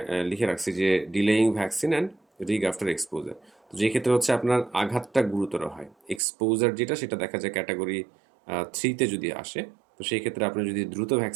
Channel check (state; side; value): drops out; left; at 6.2 s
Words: লিখে রাখছি যে delaying vaccine and rig after exposure. তো যে ক্ষেত্রে হচ্ছে আপনার আঘাতটা গুরুতর হয়, এক্সপোজার যেটা সেটা দেখা যায় ক্যাটাগরি 3-তে যদি আসে, তো সেই ক্ষেত্রে আপনি যদি দ্রুত